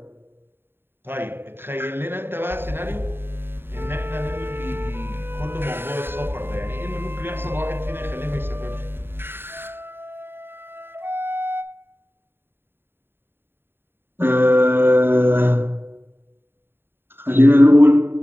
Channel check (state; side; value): late; left; 0.11 ms